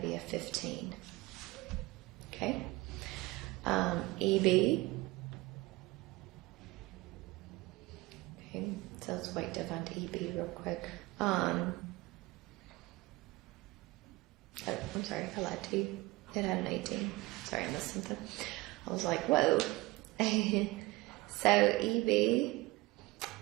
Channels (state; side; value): quieter; left; 21.2 dB